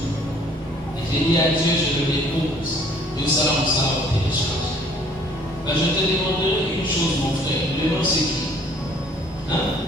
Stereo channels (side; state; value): both; normal; correlation 0.58